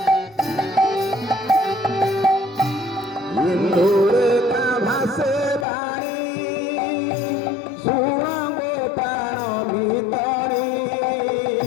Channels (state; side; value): drops out; right; at 5.7 s